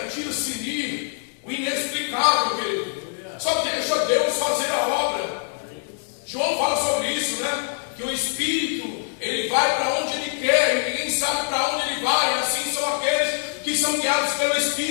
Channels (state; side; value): silent; right; digital silence